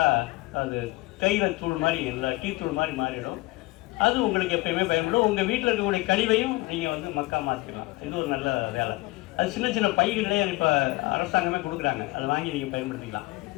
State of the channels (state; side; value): quieter; right; 21.9 dB